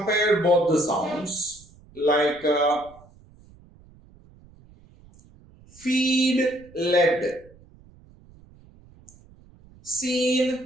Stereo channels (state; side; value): noise; right; rumble, 26 dB below the sound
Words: both the sounds like feed, led,